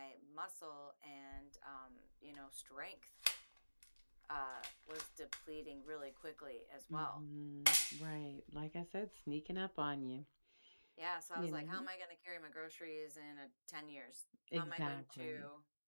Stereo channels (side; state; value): both; inverted; correlation -1.00